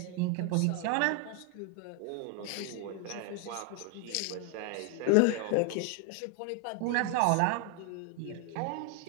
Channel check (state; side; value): different; both; correlation 0.00